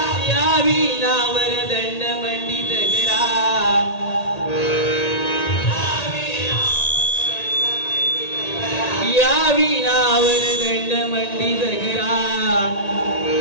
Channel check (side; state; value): right; late; 1.8 ms